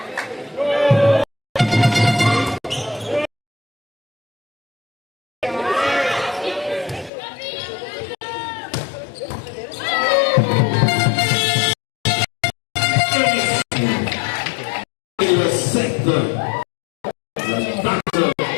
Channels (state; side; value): drops out; right; at 7.1 s